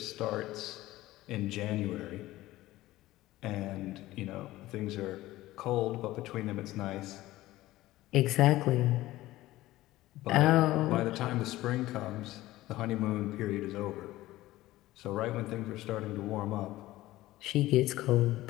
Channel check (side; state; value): right; quieter; 16.8 dB